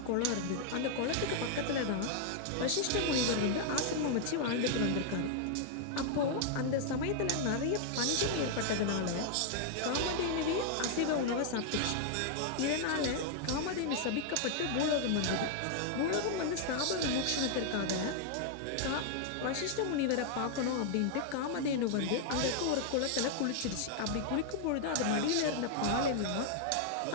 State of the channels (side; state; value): both; different; correlation -0.01